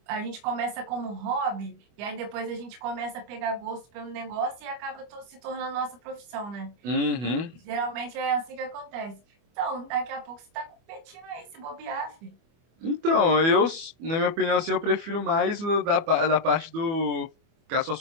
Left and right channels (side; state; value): left; late; 25 ms